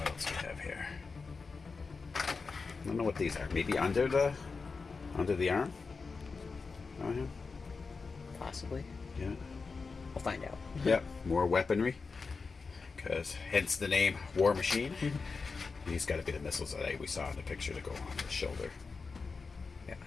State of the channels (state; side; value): quieter; right; 4.6 dB